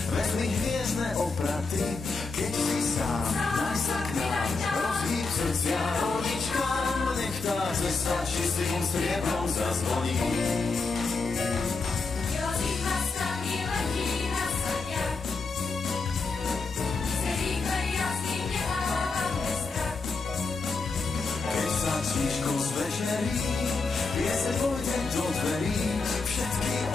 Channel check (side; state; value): right; quieter; 4.1 dB